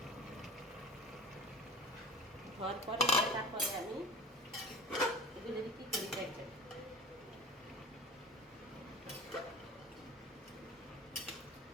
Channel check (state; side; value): normal; both; correlation 0.37